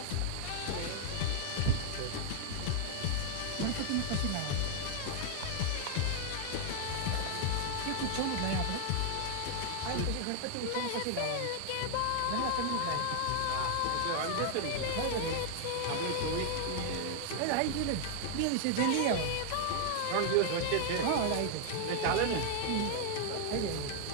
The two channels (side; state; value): both; different; correlation 0.00